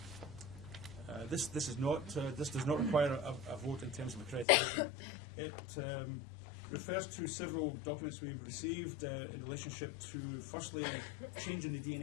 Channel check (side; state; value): right; drops out; at 4.5 s